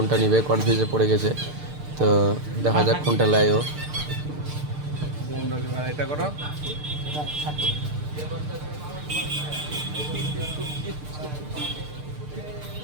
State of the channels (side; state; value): left; late; 6.7 ms